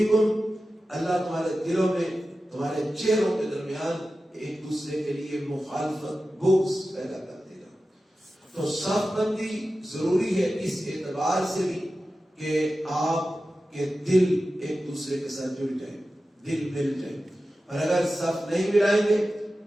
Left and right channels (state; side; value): normal; both; correlation 0.94